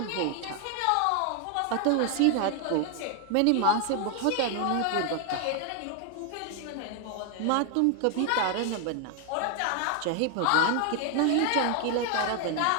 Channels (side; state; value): both; different; correlation 0.00